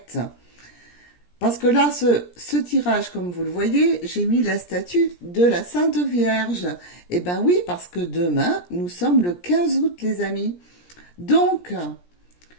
Parce que là, ce tirage, comme vous le voyez, j'ai mis la statue de la Sainte Vierge. Eh ben oui, parce que demain, nous sommes le 15 août, les amis. Donc,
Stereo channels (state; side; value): late; right; 17 ms